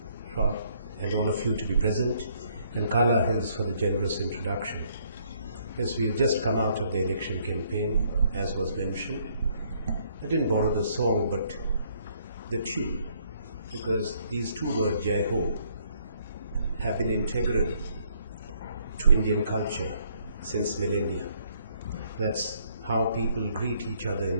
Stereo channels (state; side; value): inverted; both; correlation -0.67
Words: Schwab and all of you to be present, and Carla Hills for the generous introduction. Yes, we have just come out of the election campaign, as was mentioned. I didn't borrow the song, but the tune, because these two words, Jai Ho, have been integral to Indian culture since millennia. That's how people greet each other